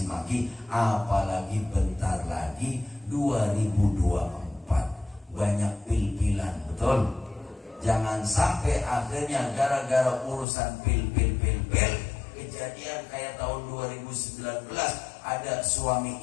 maki. Apalagi bentar lagi 2024. Banyak pil-pilan. Betul? Jangan sampai akhirnya gara-gara urusan pil, kejadian kayak tahun 2019 ada suami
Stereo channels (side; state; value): right; drops out; at 10.5 s